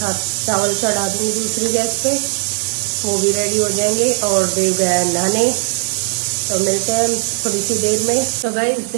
चावल चढ़ा दूँगी दूसरी गैस पे, वो भी रेडी हो जाएंगे। और देव गया नहाने, तो मिलते हैं थोड़ी सी देर में। तो गाइस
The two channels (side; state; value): left; silent; digital silence